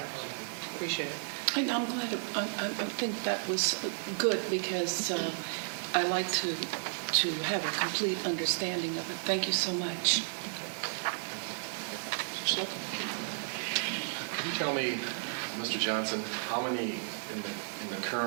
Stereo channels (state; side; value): silent; left; 55 dB below the other